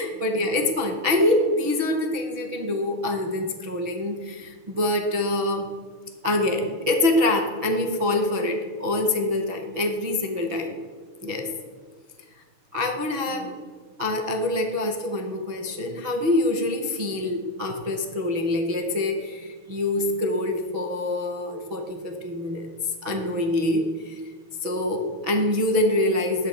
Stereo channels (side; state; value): left; late; 6.2 ms